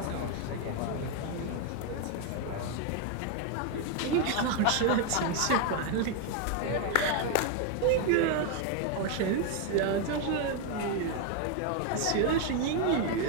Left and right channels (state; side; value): different; both; correlation 0.01